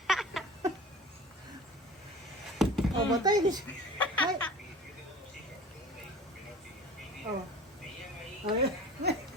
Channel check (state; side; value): normal; both; correlation 0.40